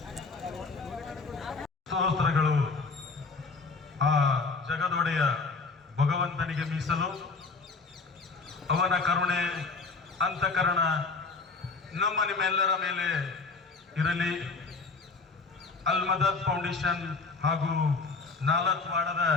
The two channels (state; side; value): quieter; right; 4.2 dB